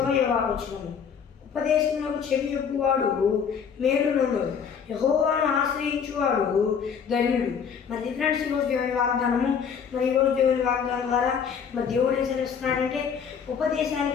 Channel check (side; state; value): right; quieter; 7.0 dB